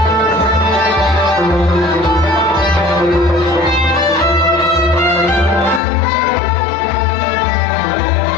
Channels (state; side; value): drops out; right; at 5.8 s